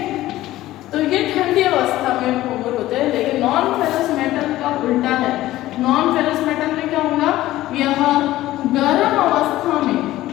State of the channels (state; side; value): quieter; right; 15.6 dB